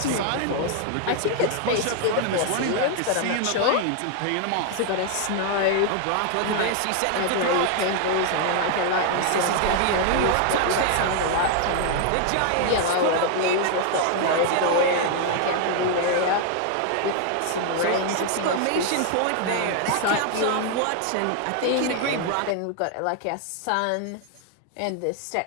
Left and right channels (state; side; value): different; both; correlation 0.00